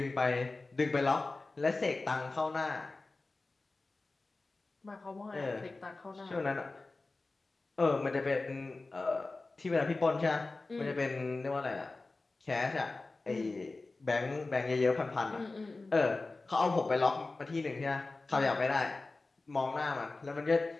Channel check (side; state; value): right; quieter; 3.4 dB